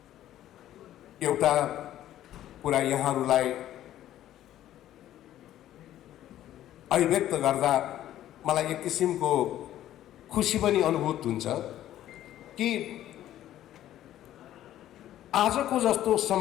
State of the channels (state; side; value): quieter; right; 12.7 dB